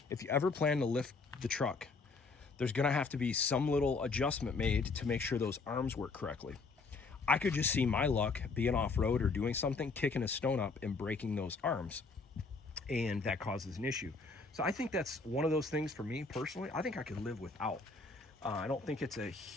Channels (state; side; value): quieter; right; 4.1 dB